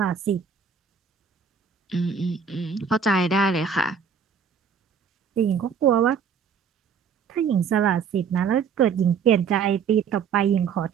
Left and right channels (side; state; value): left; quieter; 6.5 dB